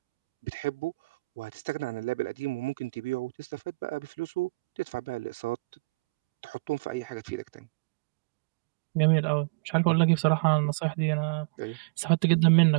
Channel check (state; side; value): drops out; left; at 6.9 s